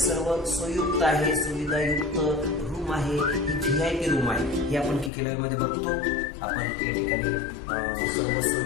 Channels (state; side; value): drops out; right; at 5.1 s